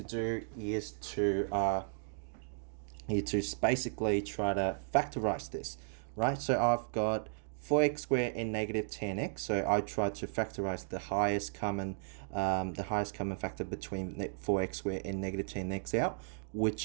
do is to basically try to factorize this, right? So I've got 4x squared and negative 10x. So I try to factorize the highest common factor between 4x squared and negative 10x out,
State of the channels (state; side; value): silent; left; digital silence